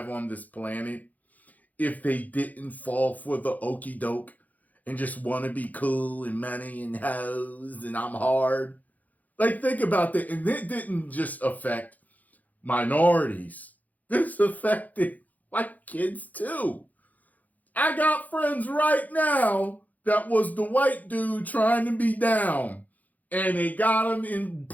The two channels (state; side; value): late; right; 0.079 ms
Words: on this planet if they didn't fall for the okie doke and just want to be cool and money and hoes and I'm hard. Like, think about that. And it didn't just affect minorities. This affected white kids too. I got friends right now that was the white dude trying to be down. And they got him in